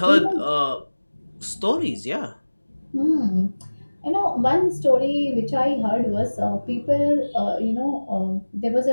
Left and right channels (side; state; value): both; inverted; correlation -1.00